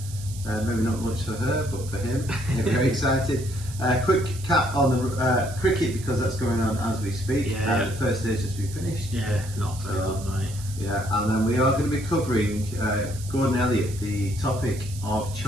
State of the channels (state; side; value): noise; right; hiss, 15 dB below the sound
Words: Maybe not much for her, but for him, very excited. Quick cap on the cricket because that's going on as we speak. Yeah. The first stage has been finished. Yeah, not very good, mate. Yeah, and then we are going to be covering Gordon Elliott, the topic of